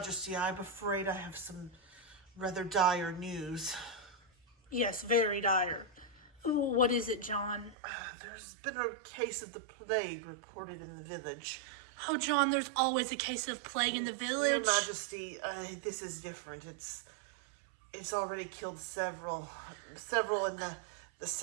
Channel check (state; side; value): drops out; left; at 7.8 s